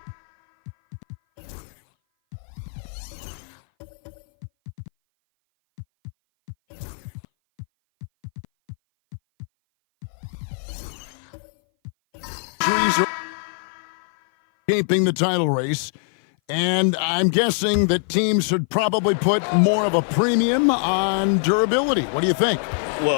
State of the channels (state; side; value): silent; right; 58 dB below the other